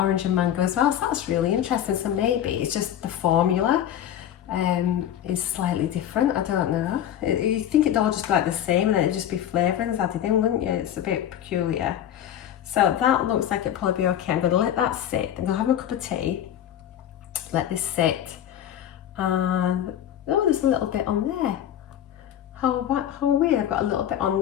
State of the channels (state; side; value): quieter; right; 10.7 dB